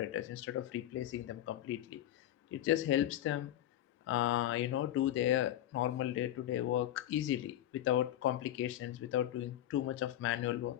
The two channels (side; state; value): right; quieter; 12.6 dB